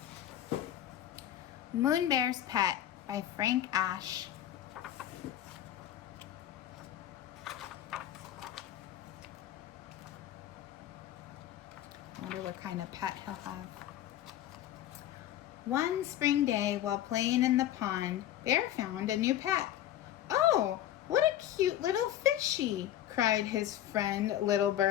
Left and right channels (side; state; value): right; quieter; 12.2 dB